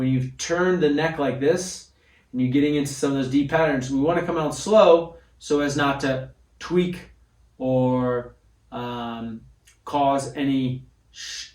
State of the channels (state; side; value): identical; both; correlation 1.00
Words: you've turned the neck like this, and you're getting into some of those deep patterns, we want to come out slow so as not to tweak or cause any